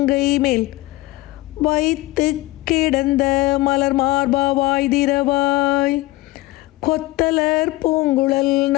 மேல் வைத்து கிடந்த மலர் மார்பா வாய்திரவாய். கொத்தலர் பூங்குழல்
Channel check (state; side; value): quieter; right; 19.3 dB